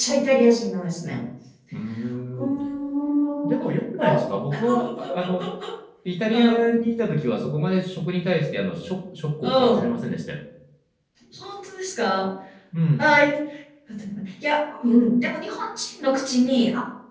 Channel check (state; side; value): identical; both; correlation 1.00